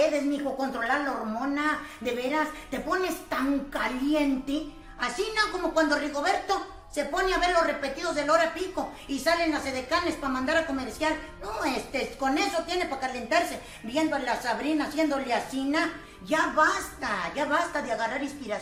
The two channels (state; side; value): identical; both; correlation 1.00